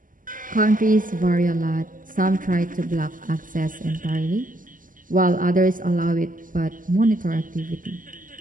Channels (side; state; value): left; late; 0.39 ms